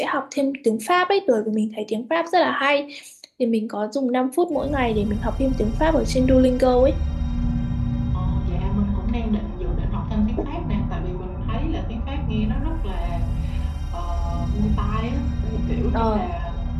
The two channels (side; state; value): both; identical; correlation 1.00